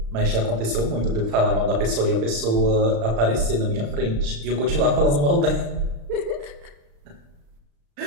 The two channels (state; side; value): late; left; 35 ms